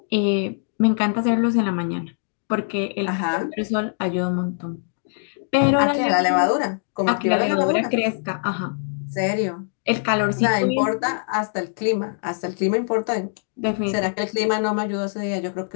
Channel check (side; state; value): right; silent; digital silence